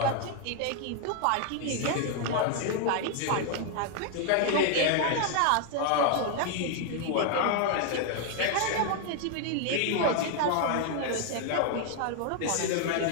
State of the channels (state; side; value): different; both; correlation 0.00